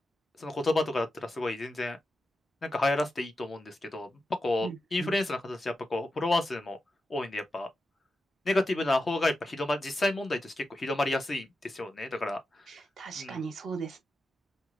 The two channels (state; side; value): normal; both; correlation 0.90